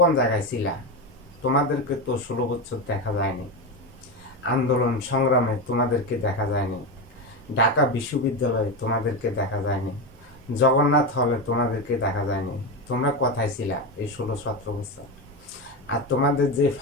জায়গায় ছিলা? তোমাদেরকে তো 16 বছর দেখা যায়নি, আন্দোলন সংগ্রামে তোমাদেরকে দেখা যায়নি, ঢাকা বিশ্ববিদ্যালয়ে তোমাদেরকে দেখা যায়নি, জগন্নাথ হলে তোমাদেরকে দেখা যায়নি। তোমরা কোথায় ছিলা এই 16-17 বছর? আর তোমাদের যে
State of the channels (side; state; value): both; normal; correlation 0.16